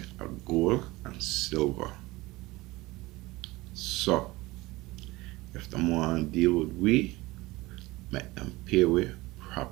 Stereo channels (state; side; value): quieter; left; 20.7 dB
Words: are gold and silver. So, if them want to deal with we, make them pay we